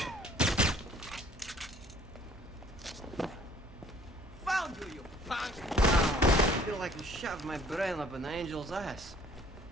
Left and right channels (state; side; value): normal; both; correlation 0.56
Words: Found you, you punk! I feel like you shoved my brain up an angel's ass.